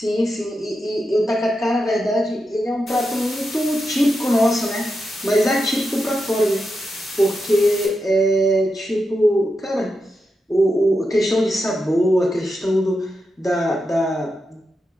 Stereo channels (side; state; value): both; normal; correlation 0.87